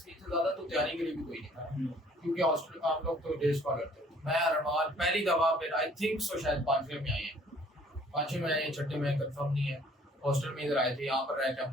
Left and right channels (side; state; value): both; normal; correlation 0.57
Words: नहीं थे ज्यादा, तो तैयारी के लिए भी कोई नहीं था, क्योंकि हॉस्टल हम लोग तो डे स्कॉलर थे। मैं अरमान पहली दफा फिर आई थिंक सो शायद पांचवें में आए हैं, पांचवें में आए हैं, छठे में कंफर्म नहीं है। हॉस्टल में इधर आए थे, यहाँ पर रह के